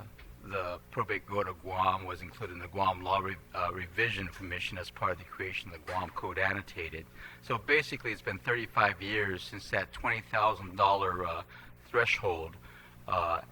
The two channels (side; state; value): both; identical; correlation 1.00